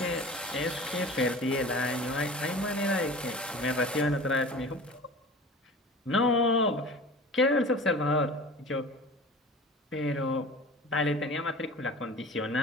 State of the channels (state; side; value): normal; both; correlation 0.39